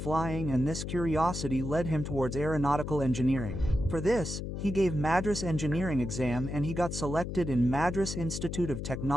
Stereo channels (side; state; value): left; noise; hum, 5 dB below the sound